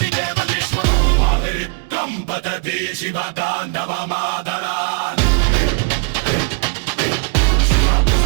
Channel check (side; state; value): left; quieter; 33.6 dB